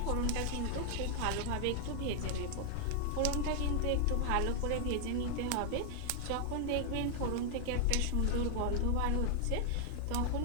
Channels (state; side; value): different; both; correlation 0.00